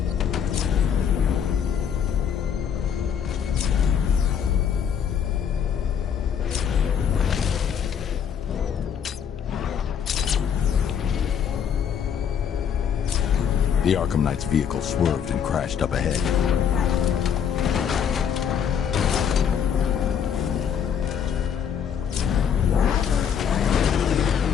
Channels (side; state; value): right; quieter; 7.9 dB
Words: The Arkham Knight's vehicle swerved and crashed up ahead.